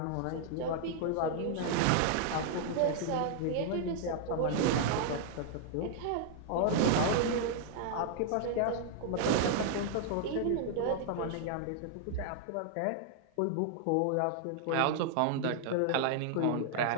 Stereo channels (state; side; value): different; both; correlation -0.01